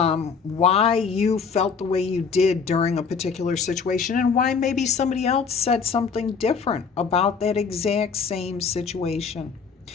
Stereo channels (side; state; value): right; quieter; 5.7 dB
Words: you felt the way you did during a particular situation, and why maybe somebody else said something different about that exact same situation.